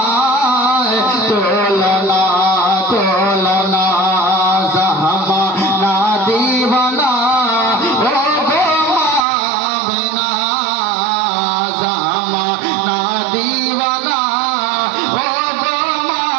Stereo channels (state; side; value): drops out; left; at 9.2 s